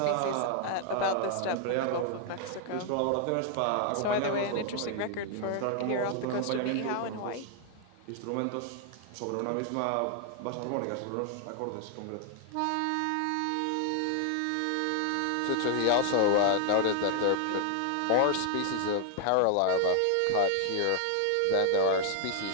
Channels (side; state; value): both; different; correlation 0.00